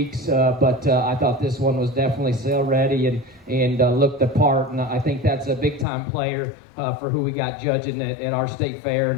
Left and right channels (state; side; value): drops out; right; at 5.9 s